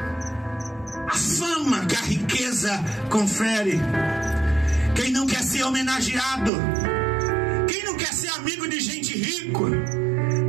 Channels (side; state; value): left; drops out; at 6.5 s